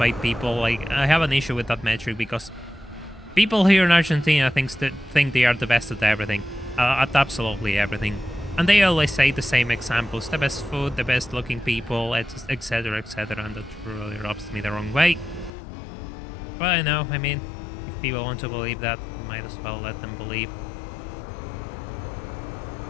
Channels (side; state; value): right; drops out; at 15.5 s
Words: people. Like, I have an issue with that metric because people here in Argentina think they are the best at everything. At absolutely everything. And they always say the same examples, the best food, the best looking people, etc, etc, and that really rubs me the wrong way. But I know, I mean, if people want to believe that, we might as well let them believe.